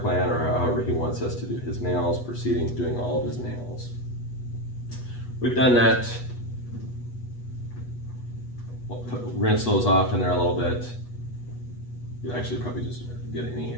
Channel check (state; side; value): late; right; 8.2 ms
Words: or however he wants us to do his nails, proceeding doing all of his nails. We've done that. We'll rinse those off in there a little bit. You actually probably just get any